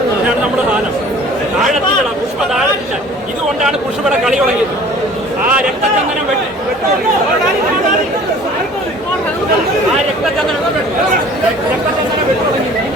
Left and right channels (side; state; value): both; normal; correlation 0.48